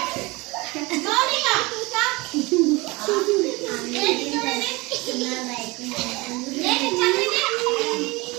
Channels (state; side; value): quieter; left; 23.7 dB